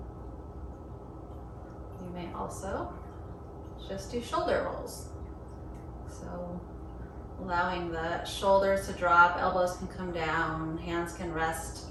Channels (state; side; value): identical; both; correlation 1.00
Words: You may also just do shoulder rolls. So allowing the shoulders to drop, elbows can come down, hands can rest